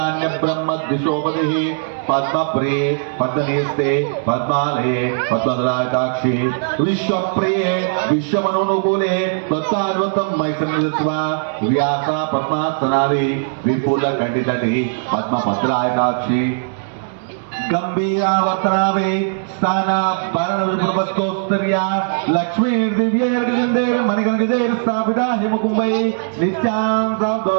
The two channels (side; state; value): left; silent; 65 dB below the other